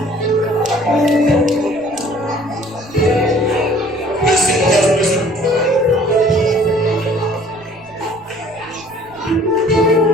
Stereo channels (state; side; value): noise; right; rumble, 26 dB below the sound